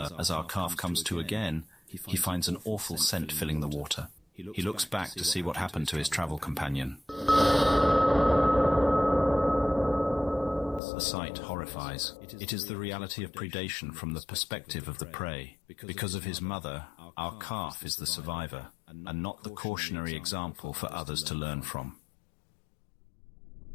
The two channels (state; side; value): drops out; right; at 10.8 s